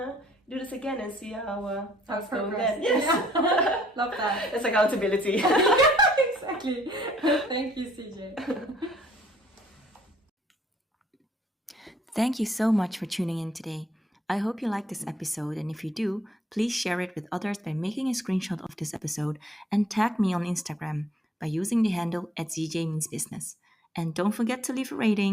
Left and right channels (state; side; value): normal; both; correlation 0.63